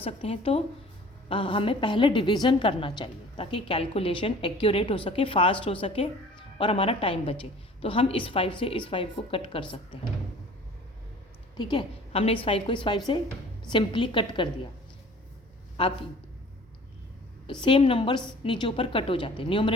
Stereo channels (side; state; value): both; normal; correlation 0.48